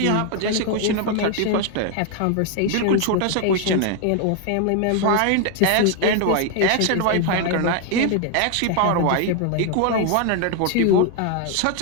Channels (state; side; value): different; both; correlation 0.01